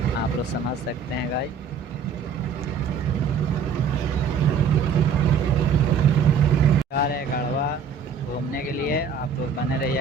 आप लोग समझ सकते हैं गाइस। जा रहे हैं गढ़वा घूमने के लिए, आप लोग बने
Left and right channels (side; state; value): left; quieter; 5.9 dB